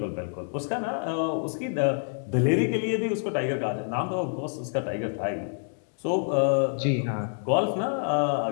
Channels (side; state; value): right; silent; digital silence